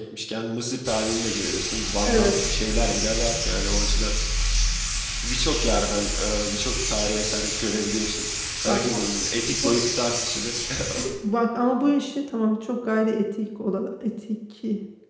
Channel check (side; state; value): both; identical; correlation 1.00